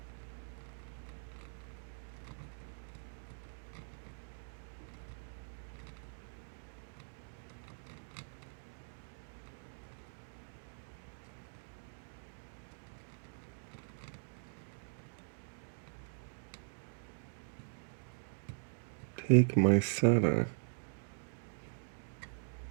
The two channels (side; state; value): left; silent; digital silence